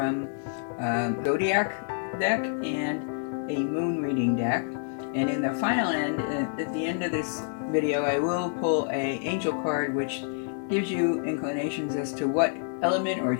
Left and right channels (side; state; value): right; silent; digital silence